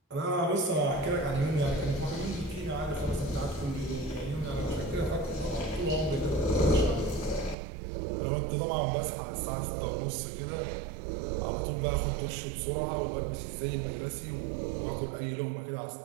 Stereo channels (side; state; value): left; drops out; at 7.6 s